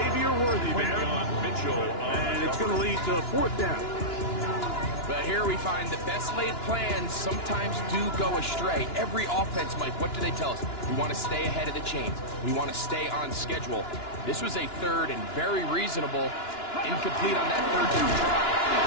Worthy there. And it's going to lead to 4th down. But here we find the best laid plans sometimes do go astray. Every offense, Mike, what do they tell us? We want to stay ahead of the chains. We want to stay on schedule. This was a 3rd and very reasonable. Incomplete on that 3rd down try.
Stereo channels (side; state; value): right; late; 2.9 ms